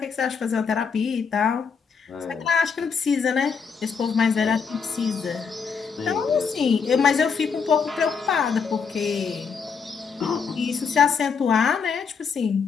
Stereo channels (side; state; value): right; quieter; 5.9 dB